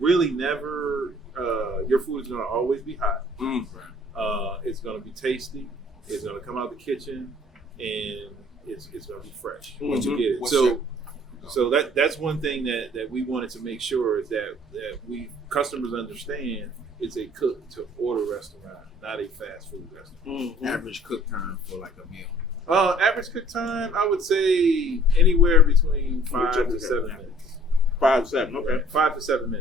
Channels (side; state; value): both; normal; correlation 0.55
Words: really never your food is going to always be hot. It's going to be tasty. It's going to come out the kitchen, and it's going to be fresh once you get it. So that's one thing that we wanted to make sure is that we customers understand it's a cook to order restaurant, not a fast food restaurant. Average cook time for like a meal. Average cook time, I would say anywhere between 5 to 7 minutes. 5 to 7, okay. 5 to 7